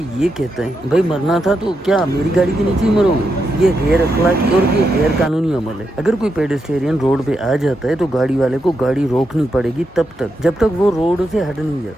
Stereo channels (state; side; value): normal; both; correlation 0.84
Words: ये कहता है भाई मरना था तो क्या मेरी गाड़ी के नीचे ही मरोगे। ये गैर अखलाकी और ये गैर कानूनी अमल है। अगर कोई पेडेस्टेरियन रोड पे आ जाता है तो गाड़ी वाले को गाड़ी रोकनी पड़ेगी तब तक जब तक वो रोड से हट नहीं